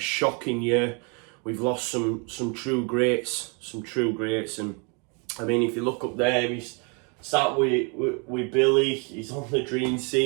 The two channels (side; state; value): left; quieter; 34.5 dB